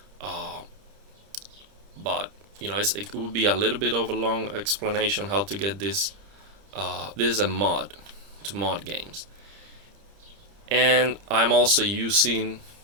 but it would be a little bit of a long explanation how to get this. This is a mod to mod games, and I'm also using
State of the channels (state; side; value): late; left; 30 ms